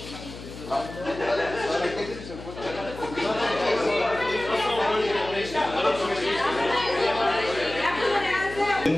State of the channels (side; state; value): left; noise; hum, 13 dB below the sound